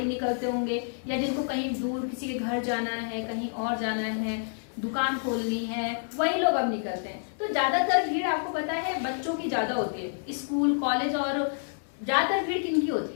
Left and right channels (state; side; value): silent; right; digital silence